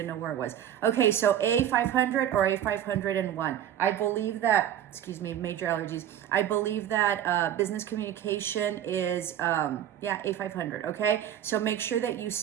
know where it was. Okay, so A500 or A501. I believe that, major allergies. I believe that business communication is, A500, okay? So make sure that you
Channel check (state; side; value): quieter; left; 10.7 dB